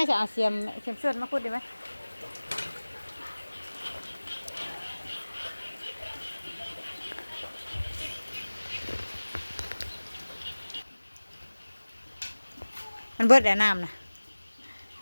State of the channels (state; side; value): inverted; both; correlation -1.00